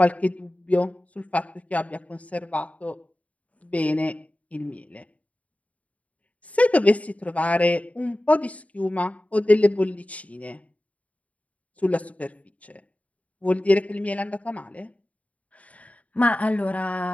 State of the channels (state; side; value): late; right; 0.068 ms